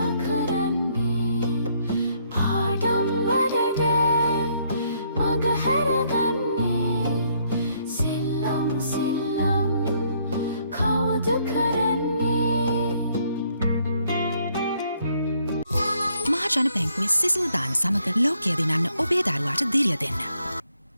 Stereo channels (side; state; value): both; inverted; correlation -0.69